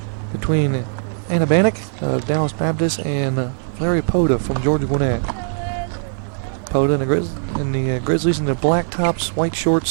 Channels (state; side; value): silent; left; digital silence